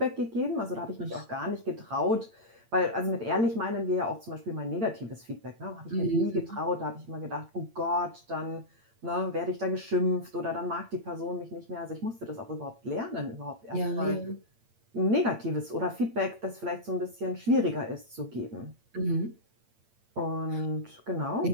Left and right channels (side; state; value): left; late; 8.8 ms